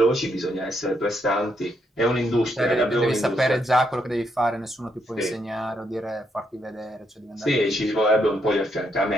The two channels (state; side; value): normal; both; correlation 0.77